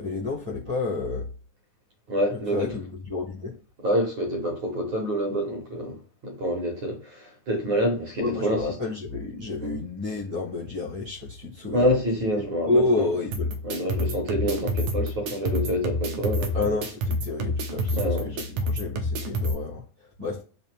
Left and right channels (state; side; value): late; left; 10 ms